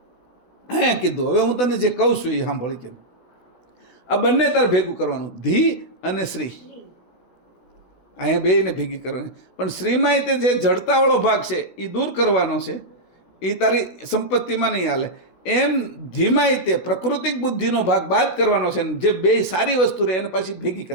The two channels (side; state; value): right; late; 16 ms